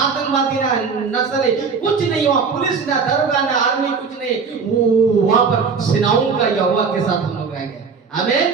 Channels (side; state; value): left; quieter; 5.4 dB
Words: ना नक्सली कुछ नहीं, वहाँ पुलिस ना दरोगा ना आर्मी कुछ नहीं। वहाँ पर सेनाओं का यहोवा के साथ हम लोग रहेंगे। आमीन।